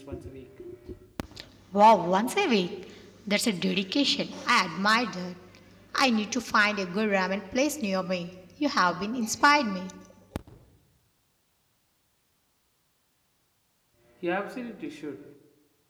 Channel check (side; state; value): both; identical; correlation 1.00